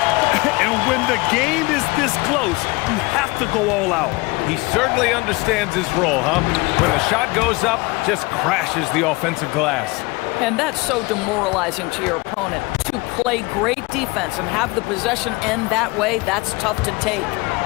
And when the game is this close, you have to go all out. He certainly understands his role, huh? When the shot goes up, just crashes the offensive glass. And that's so demoralizing to your opponent. To play great defense and have the possession end that way, that's tough to take.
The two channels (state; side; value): quieter; right; 24.3 dB